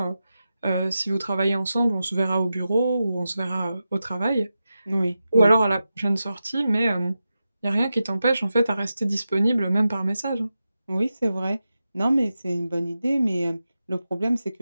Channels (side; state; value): both; inverted; correlation -0.91